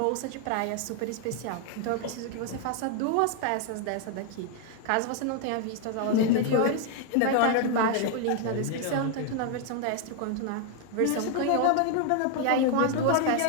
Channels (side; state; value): both; different; correlation 0.00